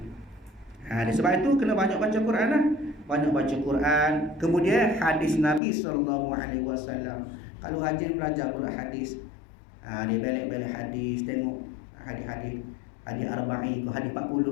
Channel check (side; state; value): right; drops out; at 5.6 s